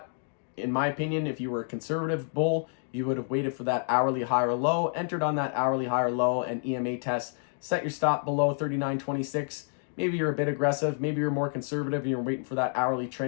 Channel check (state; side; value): silent; right; digital silence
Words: in my opinion, if you were a conservative bull, you would have waited for that hourly higher low, entered on that hourly higher low and EMA test, set your stop below 39.26. Maybe you're a bit aggressive, maybe you're more conservative and you're waiting for that hourly